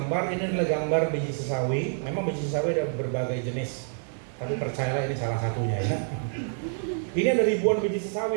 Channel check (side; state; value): left; silent; digital silence